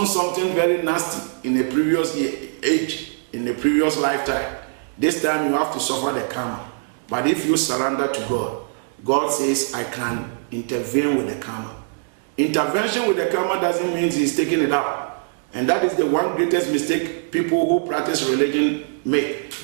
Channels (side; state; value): left; silent; digital silence